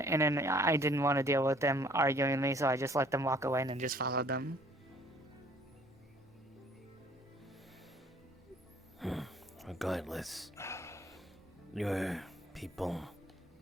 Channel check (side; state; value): both; normal; correlation 0.58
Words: then I didn't want to deal with them arguing with me, so I just let them walk away and then just followed them. Regardless, your people